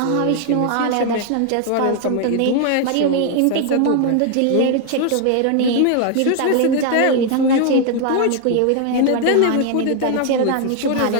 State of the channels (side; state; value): both; different; correlation 0.00